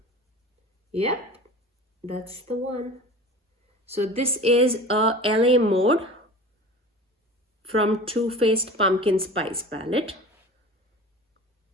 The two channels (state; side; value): normal; both; correlation 0.37